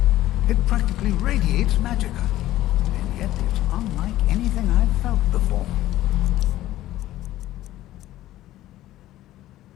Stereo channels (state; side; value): quieter; right; 14.7 dB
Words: it practically radiates magicka, and yet it's unlike anything I've felt before.